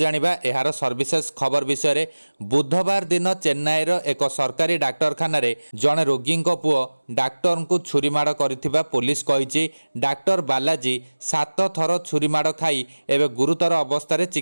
एहार सर्विसेस खबर विषय रे। बुधवार दिन चेन्नईर एक सरकारी डाक्तरखाना रे जणे रोगी पुओ डाक्टर को छुरी माड़ करिथिबा पुलिस कहिछि। डाक्टर बालाजी 7 थर छुरी माड़ खाई एवं गुरुतर अवस्था रे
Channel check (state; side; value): inverted; both; correlation -1.00